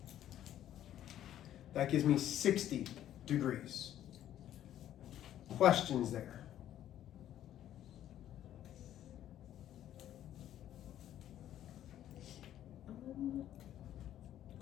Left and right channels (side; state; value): right; quieter; 11.7 dB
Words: That gives me 60 degrees. Questions there?